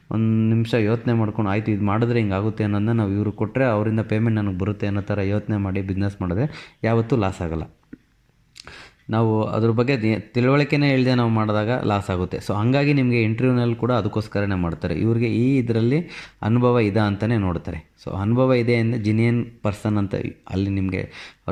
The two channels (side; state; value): both; identical; correlation 1.00